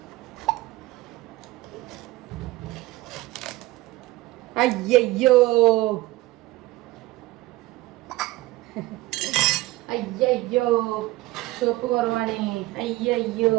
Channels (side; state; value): left; quieter; 18.5 dB